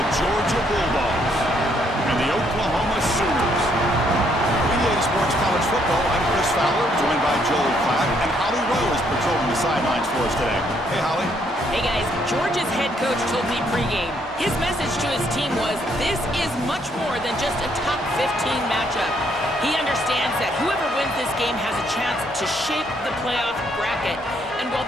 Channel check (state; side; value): normal; both; correlation 0.70